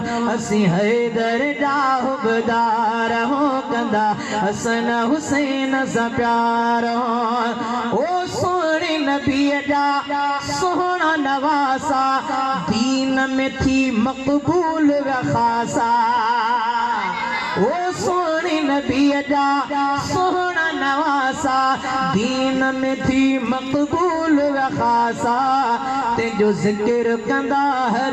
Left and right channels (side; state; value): both; identical; correlation 1.00